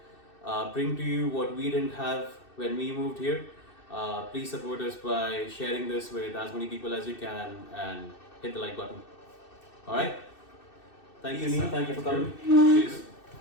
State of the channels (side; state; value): right; late; 2.6 ms